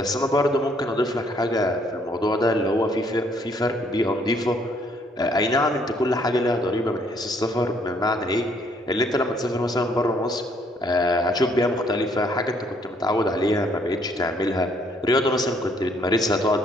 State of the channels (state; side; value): normal; both; correlation 0.66